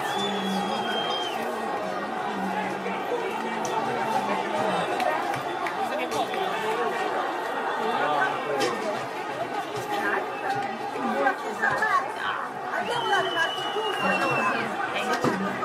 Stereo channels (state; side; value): identical; both; correlation 1.00